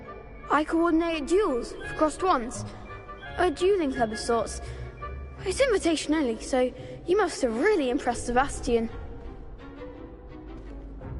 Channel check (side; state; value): both; identical; correlation 1.00